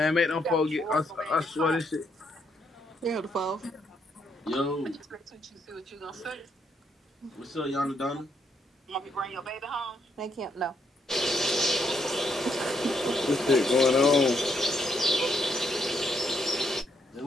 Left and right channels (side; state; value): both; normal; correlation 0.75